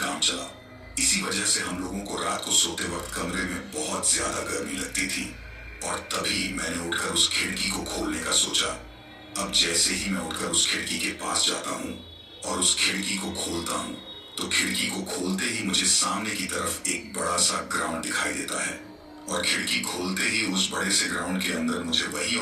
चलाओ। इसी वजह से हम लोगों को रात को सोते वक्त कमरे में बहुत ज्यादा गर्मी लगती थी और तभी मैंने उठकर उस खिड़की को खोलने का सोचा। अब जैसे ही मैं उठकर उस खिड़की के पास जाता हूँ और उस खिड़की को खोलता हूँ तो खिड़की को खोलते ही मुझे सामने की तरफ एक बड़ा सा ग्राउंड दिखाई देता है और खिड़की खोलते ही उस बड़े से ग्राउंड के अंदर मुझे वही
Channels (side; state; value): both; identical; correlation 1.00